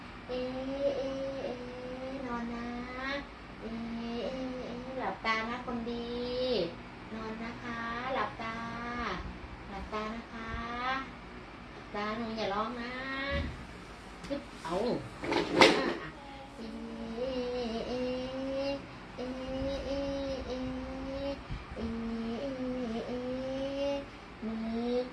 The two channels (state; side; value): identical; both; correlation 1.00